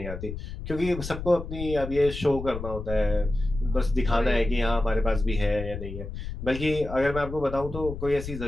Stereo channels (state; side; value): noise; left; rumble, 8 dB below the sound